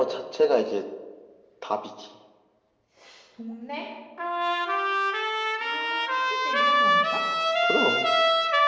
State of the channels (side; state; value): both; identical; correlation 1.00